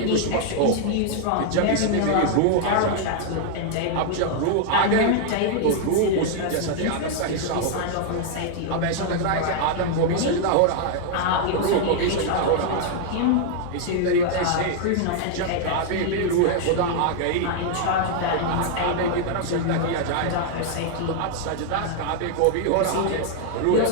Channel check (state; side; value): different; both; correlation 0.00